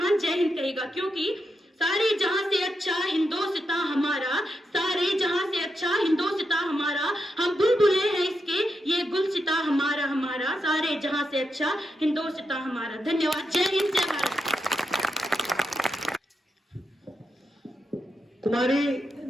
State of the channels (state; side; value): normal; both; correlation 0.85